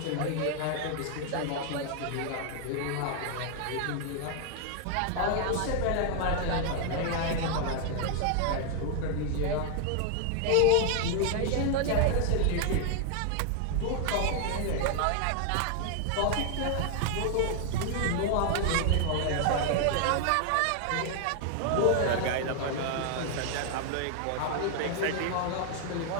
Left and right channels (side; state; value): both; different; correlation 0.00